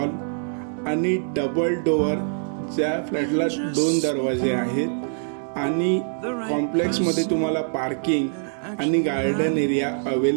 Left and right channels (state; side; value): silent; left; digital silence